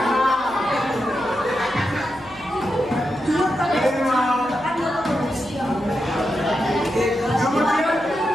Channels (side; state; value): left; noise; hum, 24 dB below the sound